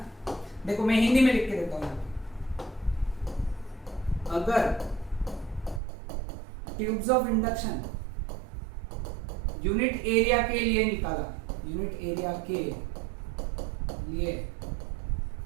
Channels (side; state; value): left; drops out; at 5.8 s